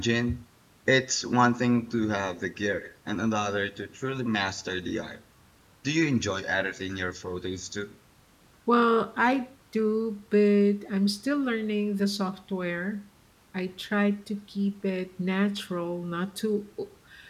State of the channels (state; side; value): identical; both; correlation 1.00